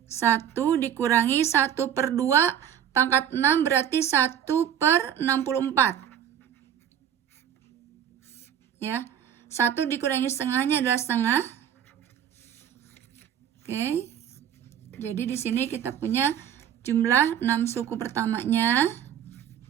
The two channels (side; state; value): left; quieter; 9.5 dB